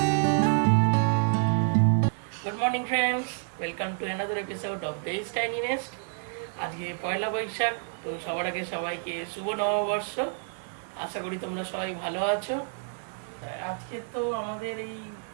Good morning friends, welcome to another episode of the tiny nest. আজকে পয়লা বৈশাখ, তো সবার আগে সবাইকে শুভ নববর্ষ। আশা করি তোমরা সবাই ভালো আছো। আজকে তো আমাদের এই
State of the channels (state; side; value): silent; left; 58 dB below the other